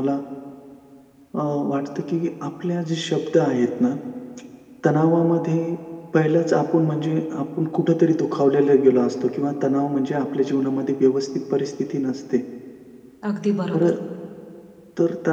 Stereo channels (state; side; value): identical; both; correlation 1.00